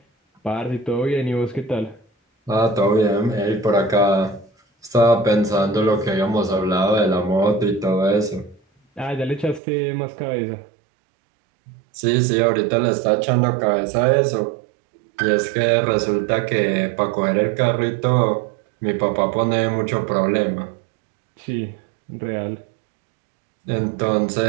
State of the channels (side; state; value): left; drops out; at 9.6 s